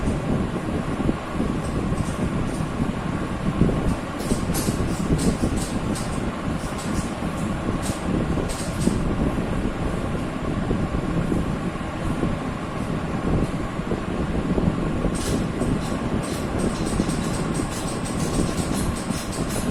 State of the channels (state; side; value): identical; both; correlation 1.00